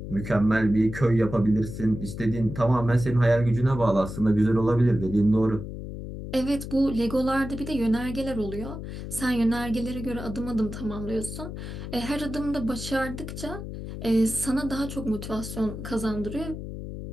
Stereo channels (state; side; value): noise; left; hum, 8 dB below the sound